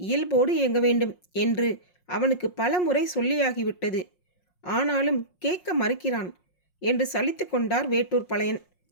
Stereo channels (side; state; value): right; late; 5.5 ms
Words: இயல்போடு இயங்க வேண்டும் என்று அவனுக்கு பல முறை சொல்லியாகிவிட்டது. ஆனாலும் கேட்க மறுக்கிறான் என்று சலித்து கொண்டார் வேட்டூர் பழையன்.